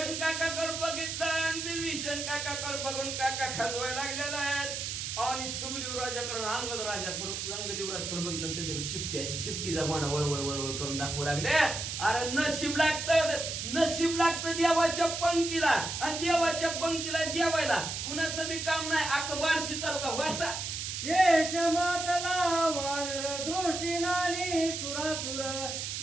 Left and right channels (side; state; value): right; noise; hiss, 4 dB below the sound